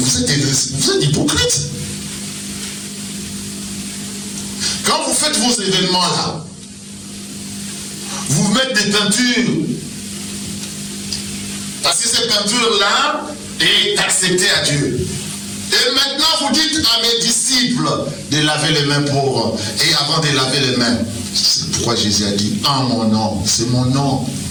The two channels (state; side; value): identical; both; correlation 1.00